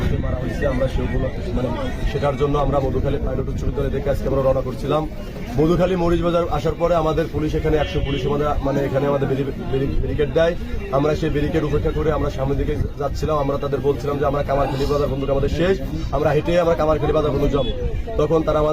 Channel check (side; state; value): both; identical; correlation 1.00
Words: মারা হয়েছে, আমরা সেগুলো মানে শেখার জন্য আমরা মধুখালী পাইলট উচ্চ বিদ্যালয় থেকে আজকে আমরা রওনা করছিলাম। মধুখালী মরিচ বাজার আসার পরে আমাদের পুলিশ এখানে 100 পুলিশ মানে এখানে আমাদের ব্যারিকেড দেয়। আমরা সেই ব্যারিকেড উপেক্ষা করে আমরা সামনের দিকে যাচ্ছিলাম। আমরা তাদের বলছিলাম যে আমরা কামারখালী বাজার বন্ধুক আমাদের শেষ, আমরা হেঁটে আমরা কামারখালী বাজার বন্ধুক যাবো। তখন তারা